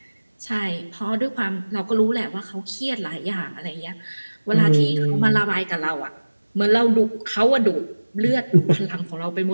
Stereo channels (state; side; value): inverted; both; correlation -1.00